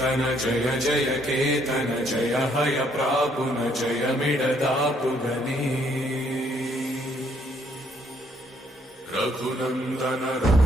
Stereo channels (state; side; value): normal; both; correlation 0.68